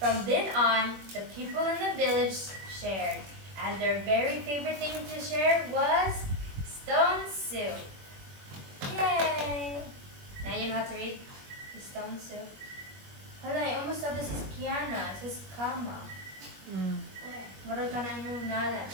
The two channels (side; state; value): left; late; 21 ms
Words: then on, the people in the village shared, and their very favorite thing to share was stone soup. Yay! Now you know how to read the stone soup. Hala, I almost thought this is Kiana. This is Kama. Marag ka na yung nala.